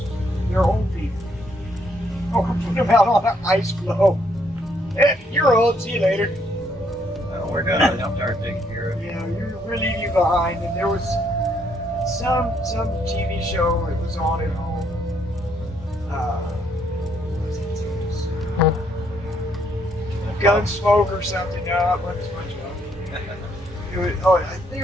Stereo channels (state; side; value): normal; both; correlation 0.71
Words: their own people. Or put them out on an ice floe. Hey, you're old, see you later. We're done. I'll start taking care of it. We're leaving you behind. And there was some TV show that was on at home. What was it? Gunsmoke or something. No, it wasn't SpongeBob. I